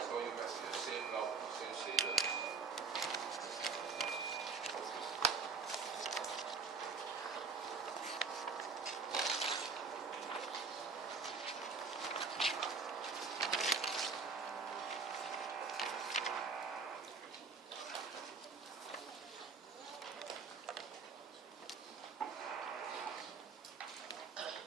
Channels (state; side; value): quieter; left; 4.9 dB